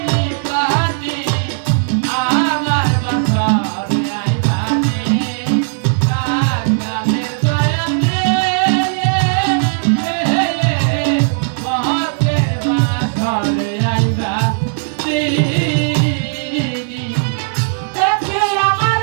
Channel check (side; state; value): left; silent; digital silence